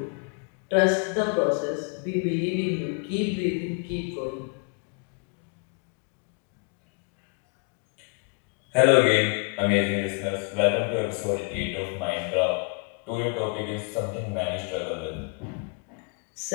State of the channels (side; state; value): right; quieter; 35.8 dB